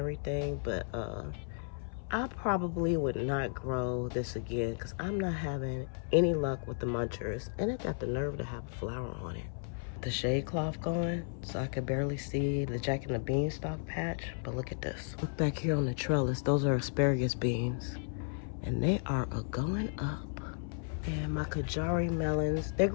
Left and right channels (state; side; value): silent; right; 55 dB below the other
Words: but I probably would not grow this again because I'm not having any luck with the munchers. And it got the nerve to have a flower on it. The shade cloth going, so I could barely see the Jack and the Beanstalk patch. But look at this. Look back here on the trellis. Those are asparagus beans. And they are going up. And my Kajari melons, they're